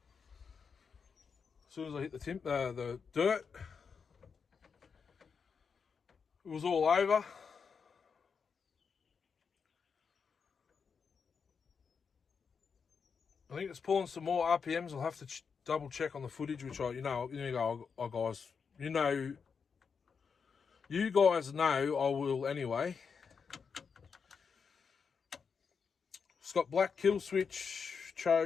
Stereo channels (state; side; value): quieter; right; 5.9 dB